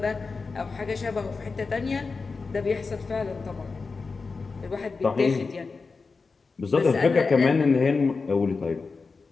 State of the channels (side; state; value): right; quieter; 4.4 dB